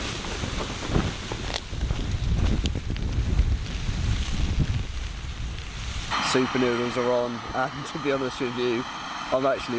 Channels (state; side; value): identical; both; correlation 1.00